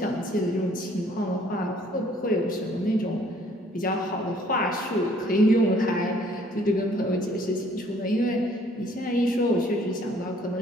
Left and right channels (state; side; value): normal; both; correlation 0.60